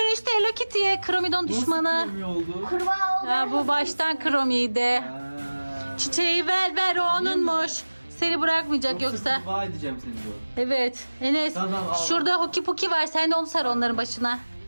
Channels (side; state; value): both; inverted; correlation -1.00